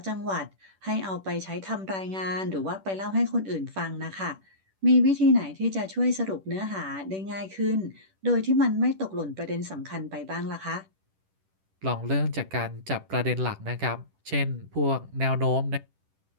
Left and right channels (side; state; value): left; late; 10 ms